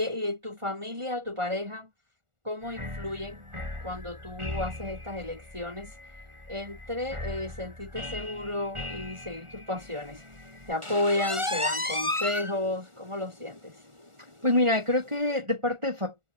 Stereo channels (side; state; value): left; late; 1.4 ms